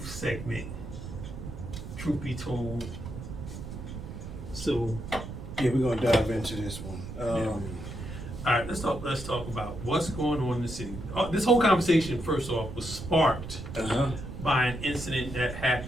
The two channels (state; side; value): noise; right; rumble, 9 dB below the sound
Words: segment. Truth be told. So yeah, we're gonna dive into this one. all right, let's talk about what's going on in the city. This whole conversation, first off, was sparked by an incident that